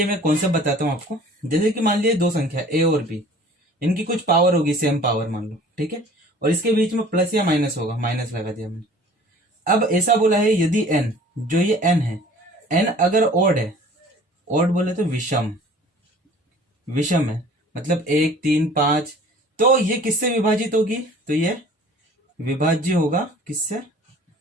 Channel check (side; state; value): both; normal; correlation 0.48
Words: मैं कॉन्सेप्ट बताता हूँ आपको। जैसे कि मान लीजिए दो संख्या ए और बी, इनकी कुछ पावर होगी, सेम पावर मान लो। ठीक है, और इसके बीच में प्लस या माइनस होगा, माइनस लगा दिया मैंने। अब ऐसा बोला है यदि एन, जो ये एन है, एन अगर ऑड है, ऑड बोले तो विषम, विषम है मतलब 1 3 5, तो ये किससे विभाजित होगी? तो ये विभाज्य होगा किससे?